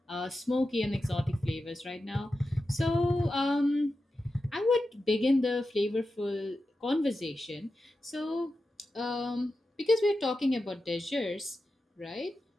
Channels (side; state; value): both; normal; correlation 0.91